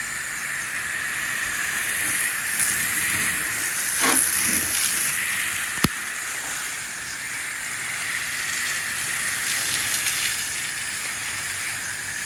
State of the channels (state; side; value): identical; both; correlation 1.00